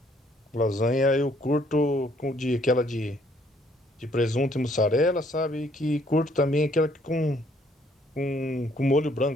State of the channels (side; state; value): both; normal; correlation 0.65